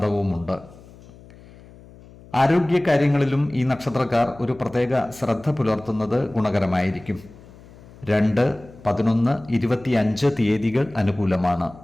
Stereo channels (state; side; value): noise; left; hum, 22 dB below the sound